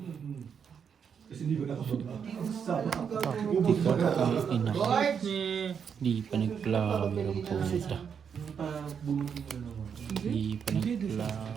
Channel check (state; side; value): quieter; left; 7.1 dB